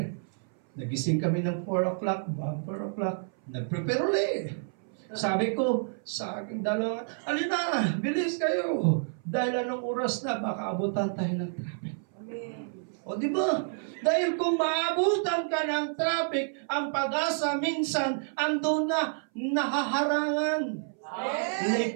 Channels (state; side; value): silent; left; 58 dB below the other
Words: Nagising kami ng 4 o'clock, bago 4 o'clock, nag-prepare ulit. Sabi ko sa aking dalawa, alina, bilis kayo. Dahil anong oras na, baka abutan tayo ng traffic. O di ba? Dahil kung maabutan ka ng traffic, ang pag-asa minsan andun na nahaharangan.